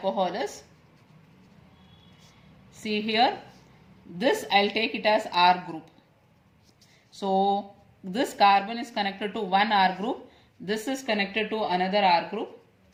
is, see here, this I'll take it as R group. So this carbon is connected to one R group, this is connected to another R group,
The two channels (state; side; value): identical; both; correlation 1.00